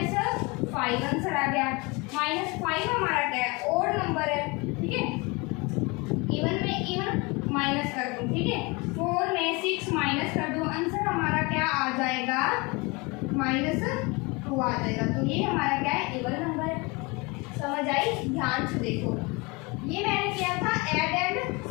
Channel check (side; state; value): right; quieter; 27.0 dB